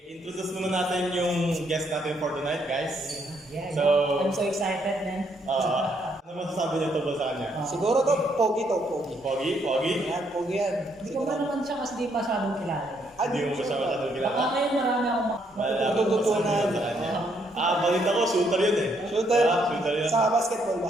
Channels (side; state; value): both; normal; correlation 0.72